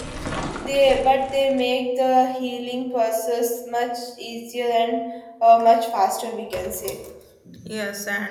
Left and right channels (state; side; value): identical; both; correlation 1.00